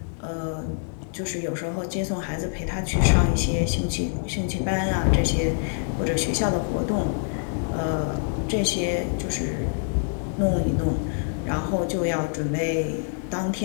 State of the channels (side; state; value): right; silent; 61 dB below the other